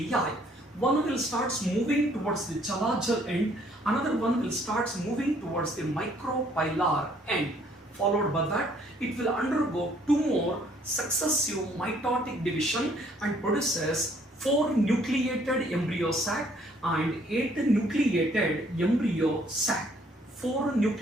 One will start moving towards the chalajal end, another one will start moving towards the micropilar end. Followed by that, it will undergo 2 more successive mitotic division and produces 4 nucleated embryo sac and 8 nucleated embryo sac. 4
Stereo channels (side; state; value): both; normal; correlation 0.63